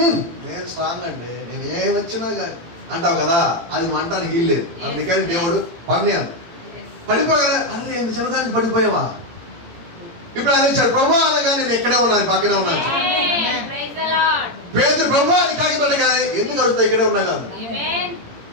నేను స్ట్రాంగ్ అండి, నేను ఏమి వచ్చినా కానీ అంటావు కదా, అది మంటానికి వీల్లేదు. అందుకని దేవుడు పని అంట. పడిపోగానే అరే ఎంత చిన్నదానికి పడిపోయావా? ఇప్పుడు అది వచ్చాడు ప్రభు అనగా నేను ఎక్కడే ఉన్నాను, పక్కనే ఉన్నాను. పేదరు ప్రభు అని కాకిపడ్డగానే ఎందుకు అడుగుతా ఇక్కడే ఉన్నా కాదు,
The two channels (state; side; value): late; left; 17 ms